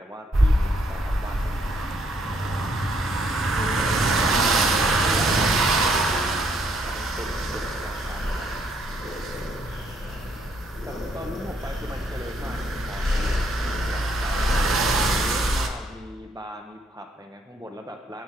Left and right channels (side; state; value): both; normal; correlation 0.70